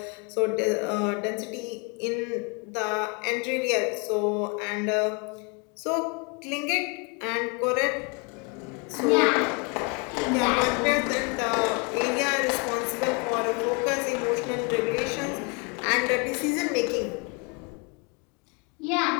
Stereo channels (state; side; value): quieter; right; 32.1 dB